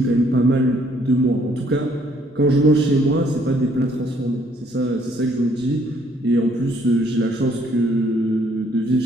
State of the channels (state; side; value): normal; both; correlation 0.65